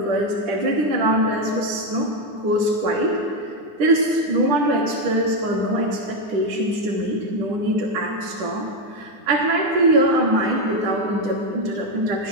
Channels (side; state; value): left; late; 10 ms